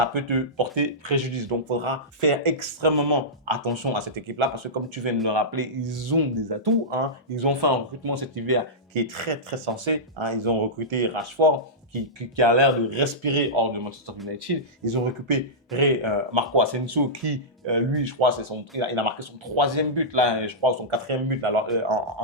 peut te porter préjudice. Donc, il faudra faire extrêmement attention à cette équipe-là parce que, comme tu viens de le rappeler, ils ont des atouts. Ils ont fait un recrutement cet hiver qui est très, très sensé. Ils ont recruté Rashford, qui a l'air de respirer hors de Manchester United. Ils ont récupéré Marco Asensio qui, lui, je crois, il a marqué son 3e but, là, je crois, son 4e but alors,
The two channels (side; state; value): both; normal; correlation -0.13